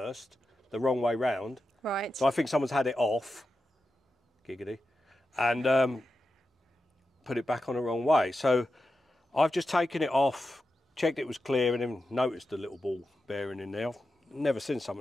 the wrong way round. Right. So I think someone's had it off, giggity, and put it back on the wrong way. So I've just taken it off, checked it was clear, and then noticed the little ball bearing in there. I've never seen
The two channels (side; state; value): both; normal; correlation 0.90